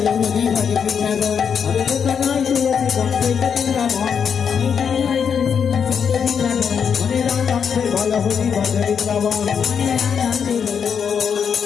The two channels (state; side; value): quieter; right; 7.1 dB